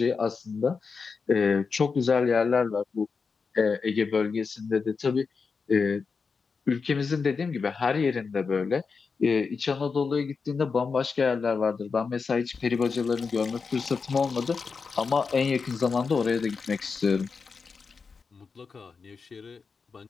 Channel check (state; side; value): quieter; right; 5.1 dB